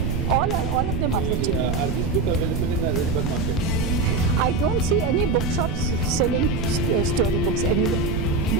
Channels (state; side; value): noise; right; rumble, 1 dB below the sound